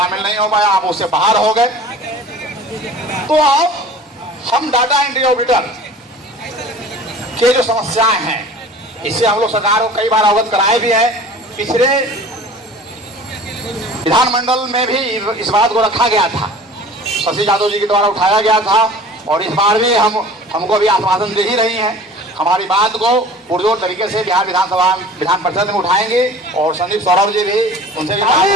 नहीं हो पाया, आप उससे बाहर हो गए। तो अब हम डाटा एंट्री ऑडिटर के जो समस्याएं हैं, इससे हम लोग सरकार को कई बार अवगत कराए भी है। पिछले विधानमंडल में भी इस बात को रखा गया था, शशि यादव जी के द्वारा उठाया गया था, और इस बार भी हमको भी आश्वासन दे ही रही हैं। हमारी बात को पुरजोर तरीके से बिहार विधान परिषद में उठाएंगे, और संदीप सौरभ जी भी उनसे भी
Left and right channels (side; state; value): both; normal; correlation 0.43